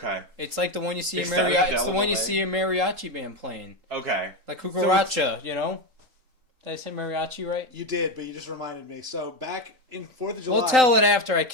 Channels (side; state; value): left; late; 3.8 ms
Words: It's like the one you see in mariachi. It's the one you see a mariachi band playing. Okay. Like cucaracha, you know? Did I say mariachi right? You did, but you just reminded me. So back in 4th of July... We'll tell it after I